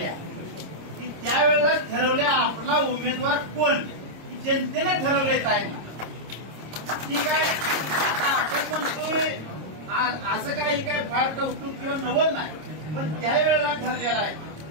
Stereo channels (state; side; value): late; left; 26 ms